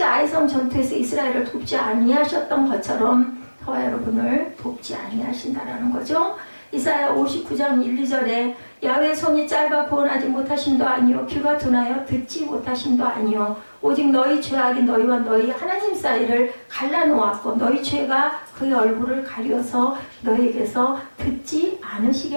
아이성 전투에서 이스라엘을 돕지 아니하셨던 것처럼 저와 여러분을 돕지 아니하신다라는 거죠. 이사야 59장 1, 2절에 야훼 손이 짧아 구원하지 못하심도 아니요 귀가 둔하여 듣지 못하심도 아니요 오직 너희 죄악이 너희와 너희 하나님 사이를 갈라놓았고 너희 죄가 그의 얼굴을 가려서 너희에게서 듣지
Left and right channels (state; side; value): inverted; both; correlation -1.00